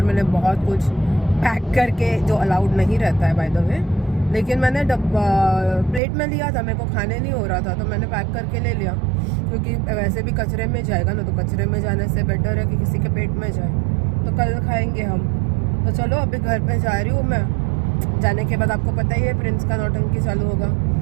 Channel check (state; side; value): drops out; left; at 6.0 s